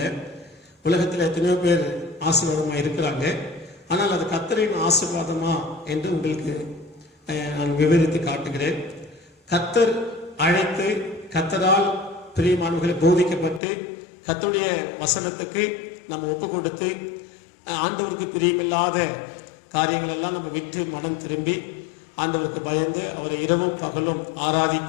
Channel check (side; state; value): right; drops out; at 13.6 s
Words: உலகத்தில் எத்தனையோ பேர் ஆசீர்வாதமாக இருக்கிறாங்க. ஆனால் அது கர்த்தரின் ஆசீர்வாதமா என்று உங்களுக்கு நான் விவரித்து காட்டுகிறேன். கர்த்தர் அழைத்து, கர்த்தரால் பிரியமானவர்களை போதிக்கப்பட்டு, கர்த்தருடைய வசனத்துக்கு நம்ம ஒப்பு கொடுத்து, ஆண்டவருக்கு பிரியமில்லாத காரியங்கள் எல்லாம் நம்ம விட்டு மனம் திரும்பி ஆண்டவருக்கு பயந்து அவரை இரவும் பகலும்